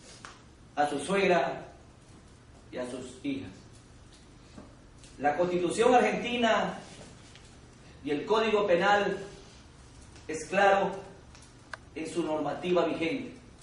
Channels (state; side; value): identical; both; correlation 1.00